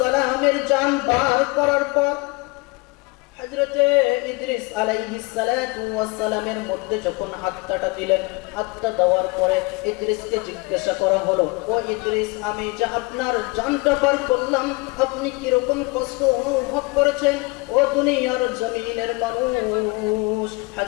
জান বার করার পর হযরতে ইদ্রিস আলাইহিস সালাতু ওয়াস সালামের মধ্যে যখন আত্মাটা দিলেন, আত্মা দেওয়ার পরে ইদ্রিসকে জিজ্ঞাসা করা হলো, ও ইদ্রিস, আমি যে আপনার জানটা বার করলাম, আপনি কি রকম কষ্ট অনুভব করেছেন? ও দুনিয়ার জমিনের মানুষ,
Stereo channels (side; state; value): right; quieter; 25.9 dB